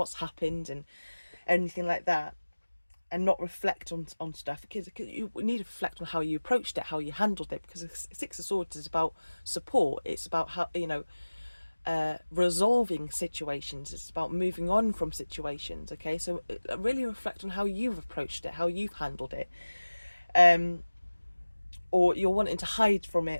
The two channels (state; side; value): inverted; both; correlation -1.00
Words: happened and anything like that, and not reflect on stuff, because you need to reflect on how you approached it, how you handled it, because Six of Swords is about support. It's about how, resolving situations. It's about moving on from situations. Okay, so really reflect on how you've approached it, how you've handled it, or you're wanting to hide from it,